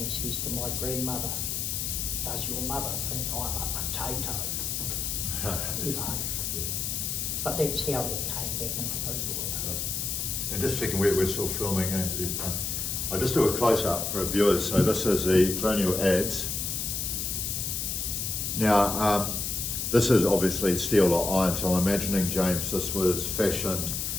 he says to my grandmother, does your mother think I'm a potato? You know. But that's how that came back into Rūruwera. And just checking, we're still filming. I'll just do a close-up for our viewers. So this is the Colonial Adze. Now, this is obviously steel or iron, so I'm imagining, James, this was fashioned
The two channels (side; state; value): left; noise; hiss, 2 dB below the sound